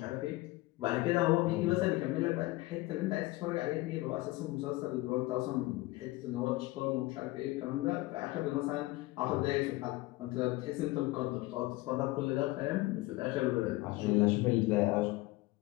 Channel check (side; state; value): right; quieter; 20.1 dB